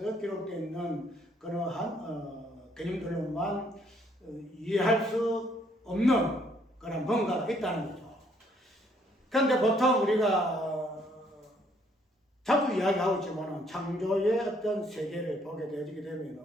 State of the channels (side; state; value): both; normal; correlation 0.67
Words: 기록되어 있는 그러한 개념들로만 이해할 수 없는 그런 뭔가가 있다는 거죠. 그런데 보통 우리가 자주 이야기하고 있지만 창조의 어떤 세계를 보게 되어지게